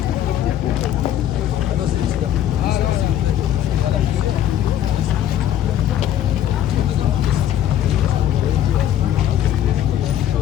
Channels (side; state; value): right; quieter; 11.1 dB